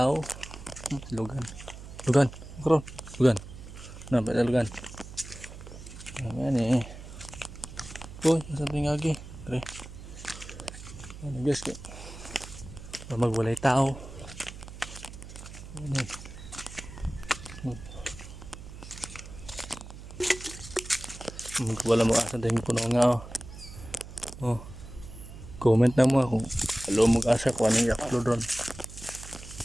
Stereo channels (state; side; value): noise; right; hum, 14 dB below the sound